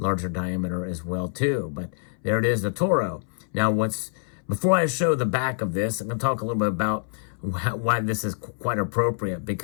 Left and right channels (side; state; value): right; silent; 60 dB below the other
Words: diameter as well too. But there it is, the Toro. Now, before I show the back of this, I'm going to talk a little bit about why this is quite appropriate.